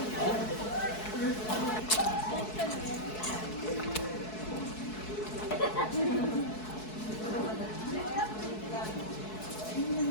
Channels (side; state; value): right; late; 4.6 ms